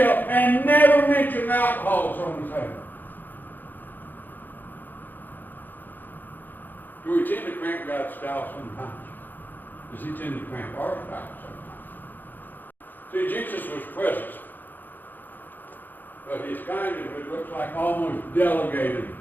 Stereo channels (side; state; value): right; late; 0.088 ms